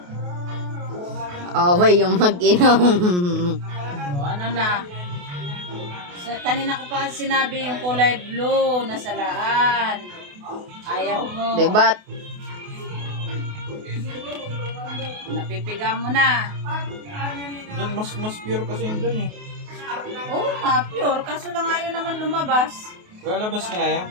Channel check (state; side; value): late; left; 28 ms